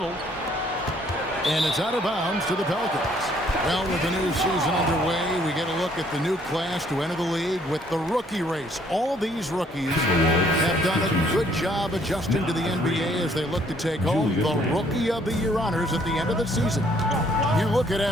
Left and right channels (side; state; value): both; normal; correlation 0.64